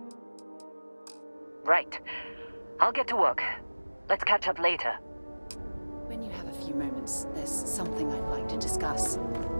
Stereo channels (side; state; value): both; inverted; correlation -1.00